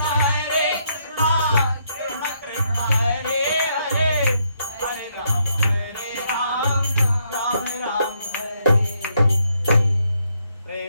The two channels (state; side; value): inverted; both; correlation -0.74